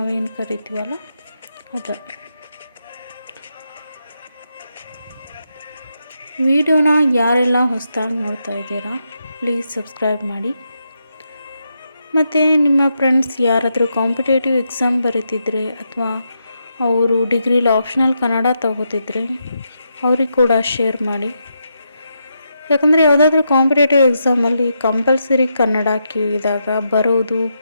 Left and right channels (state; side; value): inverted; both; correlation -0.83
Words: ಕರಿತೀವಲ್ಲ ಅದು. ವಿಡಿಯೋನ ಯಾರೆಲ್ಲ ಹೊಸದಾಗಿ ನೋಡ್ತಾ ಇದ್ದೀರಾ ಪ್ಲೀಸ್ ಸಬ್ಸ್ಕ್ರೈಬ್ ಮಾಡಿ. ಮತ್ತು ನಿಮ್ಮ ಫ್ರೆಂಡ್ಸ್ ಯಾರಾದರೂ ಕಾಂಪಿಟೇಟಿವ್ ಎಕ್ಸಾಮ್ ಬರೀತಿದ್ರೆ ಅಥವಾ ಅವರು ಡಿಗ್ರಿಲಿ ಆಪ್ಷನಲ್ ಕನ್ನಡ ತಗೋತಿದ್ರೆ ಅವ್ರಿಗೆ ಕೂಡ ಶೇರ್ ಮಾಡಿ. ಯಾಕಂದರೆ ಯಾವುದಾದ್ರೂ ಕಾಂಪಿಟೇಟಿವ್ ಎಕ್ಸಾಮಲ್ಲಿ ಕಂಪಲ್ಸರಿ ಕನ್ನಡ ಕೇಳಿದಾಗ ಬರೋದು